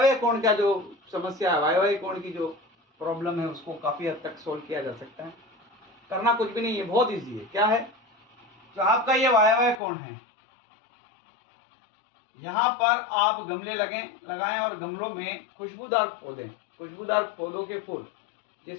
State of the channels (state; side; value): drops out; right; at 9.8 s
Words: कोण का जो समस्या है, वायव्य कोण की जो प्रॉब्लम है, उसको काफी हद तक सोल्व किया जा सकता है। करना कुछ भी नहीं है, बहुत इजी है। क्या है, जो आपका ये वायव्य कोण है, यहाँ पर आप गमले लगाएं और गमलों में खुशबूदार पौधों के फूल,